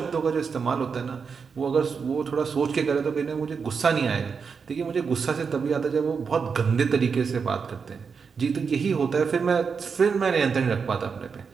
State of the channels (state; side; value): quieter; left; 5.7 dB